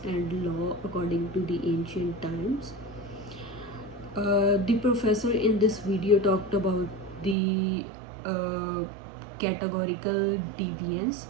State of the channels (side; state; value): left; drops out; at 7.4 s